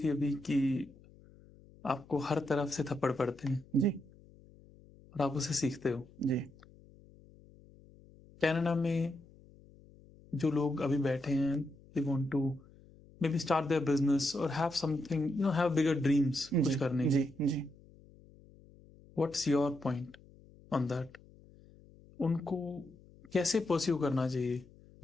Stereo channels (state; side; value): noise; left; hum, 24 dB below the sound